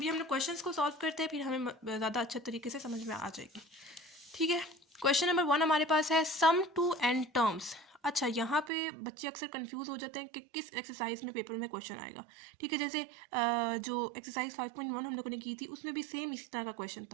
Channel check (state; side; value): drops out; left; at 8.7 s